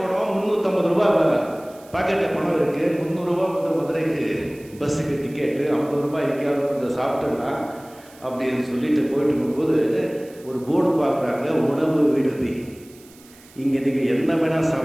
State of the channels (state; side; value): noise; right; hiss, 25 dB below the sound